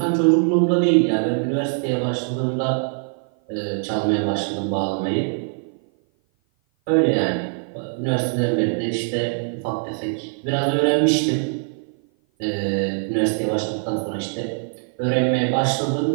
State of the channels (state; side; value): silent; left; 56 dB below the other